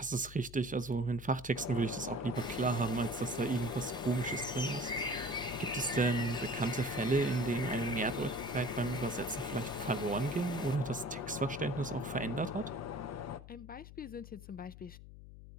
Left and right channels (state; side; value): noise; left; hum, 16 dB below the sound